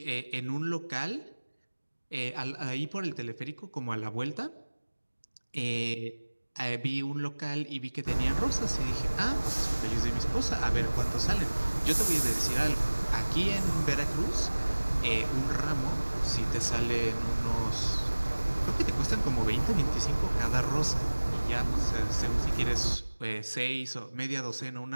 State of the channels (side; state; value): both; inverted; correlation -1.00